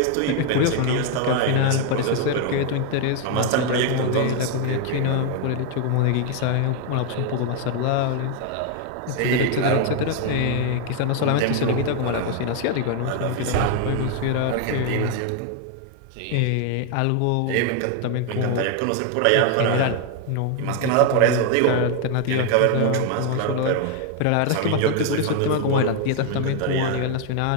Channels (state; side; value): different; both; correlation 0.00